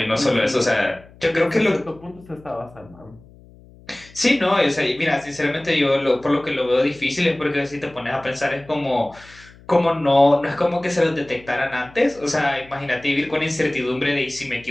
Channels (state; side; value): noise; left; hum, 24 dB below the sound